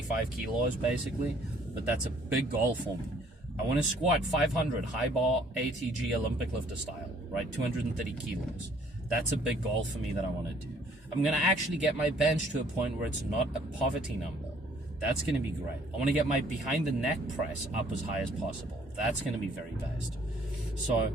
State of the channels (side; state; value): both; normal; correlation 0.60